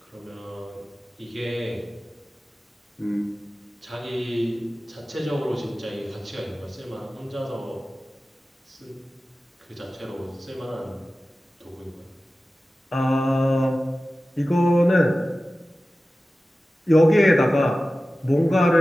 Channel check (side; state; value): both; normal; correlation 0.95